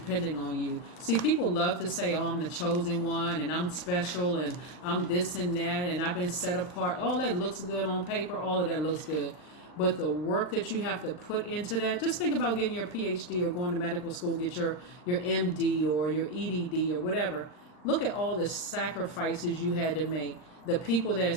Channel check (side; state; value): right; late; 39 ms